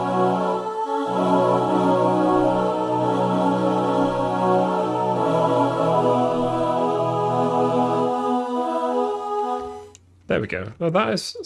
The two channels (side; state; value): both; identical; correlation 1.00